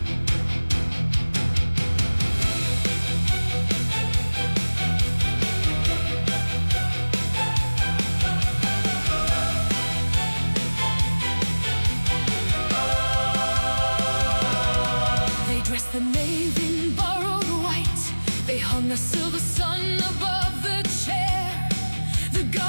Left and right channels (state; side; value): inverted; both; correlation -1.00